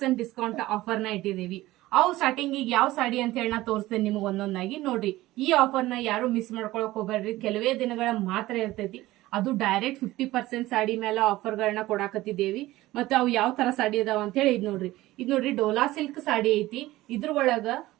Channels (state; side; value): quieter; left; 17.3 dB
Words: ಡಿಸ್ಕೌಂಟ್ ಆಫರ್ ನ ಇಟ್ಟಿದೀವಿ. ಅವು ಸ್ಟಾರ್ಟಿಂಗ್ ಈಗ ಯಾವ ಸಾಡಿ ಅಂತ ಹೇಳಿ ನಾ ತೋರಿಸ್ತೇನೆ ನಿಮ್ಗೆ ಒಂದೊಂದಾಗಿ. ನೋಡ್ರಿ, ಈ ಆಫರ್ ನ ಯಾರು ಮಿಸ್ ಮಾಡ್ಕೊಳಕ್ ಹೋಗ್ಬೇಡ್ರಿ. ಕೆಲವೇ ದಿನಗಳ ಮಾತ್ರ ಇರ್ತೈತಿ. ಅದು ಡೈರೆಕ್ಟ್ 50% ಸಾಡಿ ಮೇಲೆ ಆಫರ್ ಗಳನ್ನ ಕೊಡಾಕತ್ತಿದ್ದೇವಿ. ಮತ್ತೆ ಅವು ಯಾವ ತರ ಸಾಡಿ ಅದಾವ ಅಂತ ಹೇಳಿ ಇದ್ ನೋಡ್ರಿ ಡೋಲಾ ಸಿಲ್ಕ್ ಸಾಡಿ ಐತಿ. ಇದ್ರ ಒಳಗ